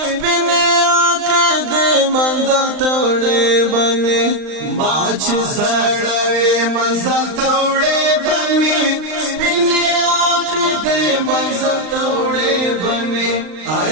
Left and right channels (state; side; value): late; left; 39 ms